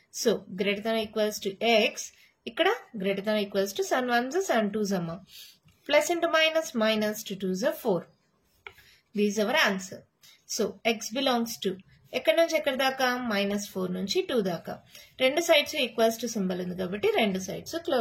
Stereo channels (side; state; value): both; identical; correlation 1.00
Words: So greater than equals to X, ఇక్కడ గ్రేటర్ దాన్ ఈక్వల్స్ టు 7 1 7 2 అమ్మా, plus into minus minus 2 2 4. These our answer. So X belongs to ఎక్కడి నుంచి ఎక్కడి దాకా, -4 నుంచి 2 దాకా. రెండు sides equals to symbol ఉంది కాబట్టి రెండు సైడ్స్